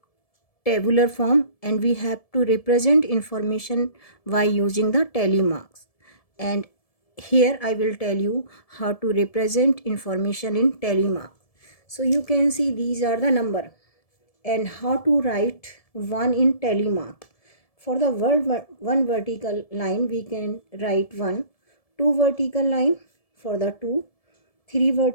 tabular form and we have to represent information by using the tally marks. And here I will tell you how to represent information in tally mark. So you can see these are the number and how to write one in tally mark. For the word one vertical line we can write 1, 2 vertical line for the 2, 3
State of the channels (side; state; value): right; late; 1.7 ms